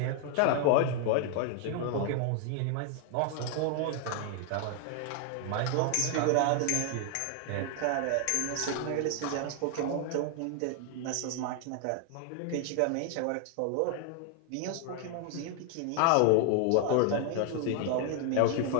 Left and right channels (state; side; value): different; both; correlation 0.00